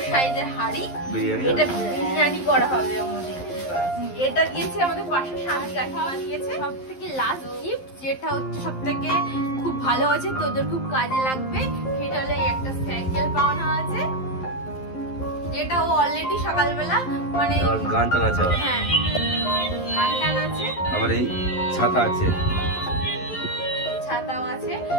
সাইজের হাঁড়ি, বিরিয়ানি এটা বিরিয়ানি করা হবে আমাদের। এটা দিয়েছে আমাদের পাশে শান্তি কাকিমা দিয়েছে। সব থেকে লাস্ট গিফট যেটা হচ্ছে সব থেকে খুব ভালো আছে, তোদের খুব কাজে লাগবে, সেটা হলো এই একটা সাইকেল পাওনা আছে, যেটা ও অলরেডি সকালবেলা মানে গান টান আছে, হ্যাঁ গান টান আছে, আবার এই ছাতা আছে, ছাতাও আছে।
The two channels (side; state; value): right; late; 11 ms